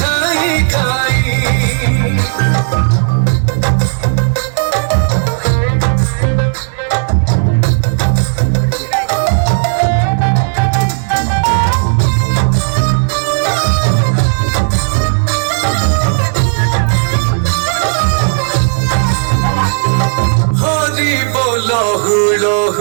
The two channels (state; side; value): silent; left; digital silence